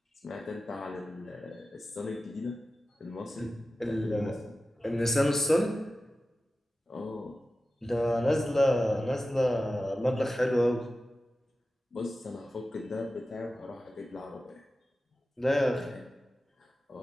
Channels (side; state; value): both; normal; correlation 0.94